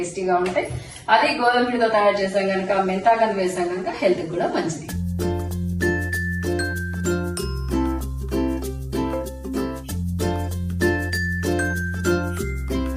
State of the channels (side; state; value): both; identical; correlation 1.00